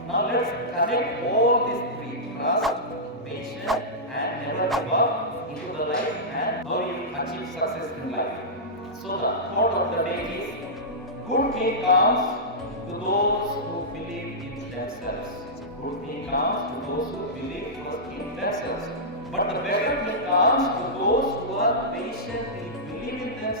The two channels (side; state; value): both; normal; correlation -0.14